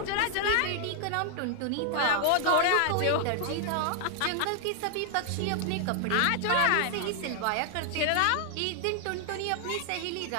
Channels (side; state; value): both; different; correlation 0.00